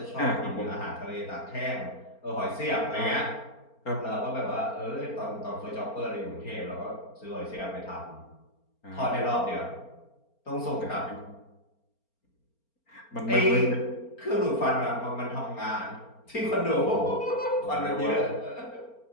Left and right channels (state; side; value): late; right; 4.4 ms